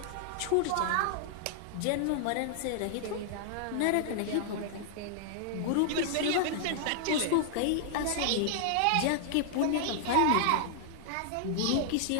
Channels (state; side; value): different; both; correlation -0.01